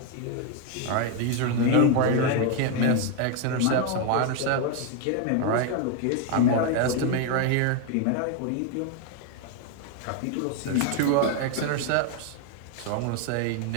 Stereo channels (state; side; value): different; both; correlation 0.01